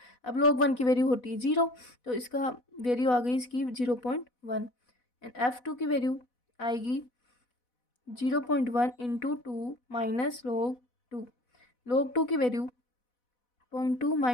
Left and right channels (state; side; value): late; right; 4.1 ms